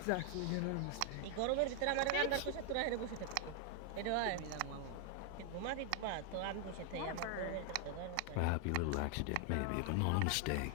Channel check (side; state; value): both; different; correlation 0.00